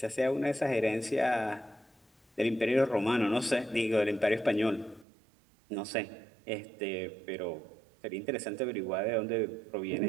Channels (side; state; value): left; drops out; at 5.1 s